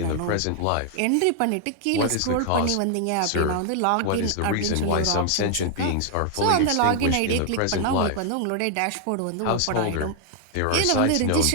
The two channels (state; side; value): different; both; correlation 0.00